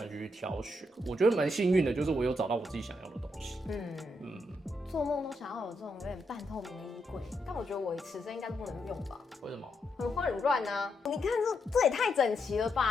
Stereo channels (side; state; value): both; normal; correlation 0.81